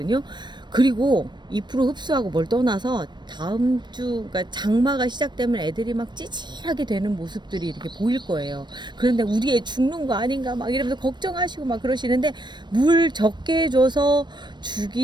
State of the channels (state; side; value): late; left; 0.22 ms